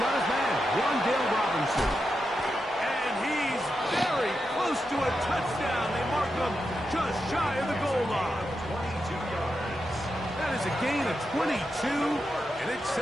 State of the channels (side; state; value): both; normal; correlation 0.87